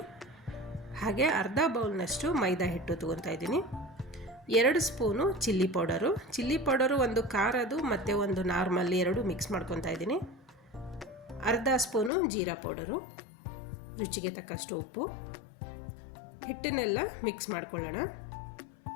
ಹಾಗೆ ಅರ್ಧ ಬೌಲ್ನಷ್ಟು ಮೈದಾ ಹಿಟ್ಟು ತೊಗೊತಾ ಇದ್ದೀನಿ. 2 ಸ್ಪೂನು ಚಿಲ್ಲಿ ಪೌಡರು ಒಂದು ಖಾರದು ಮತ್ತು ಒಂದು ನಾರ್ಮಲ್ 2 ಮಿಕ್ಸ್ ಮಾಡ್ಕೊತಾ ಇದ್ದೀನಿ. ಅರ್ಧ ಸ್ಪೂನು ಜೀರಾ ಪೌಡರು, ರುಚಿಗೆ ತಕ್ಕಷ್ಟು ಉಪ್ಪು. ಹಿಟ್ಟನ್ನೆಲ್ಲ ಮಿಕ್ಸ್ ಮಾಡ್ಕೊಳ್ಳೋಣ.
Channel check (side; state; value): right; drops out; at 12.1 s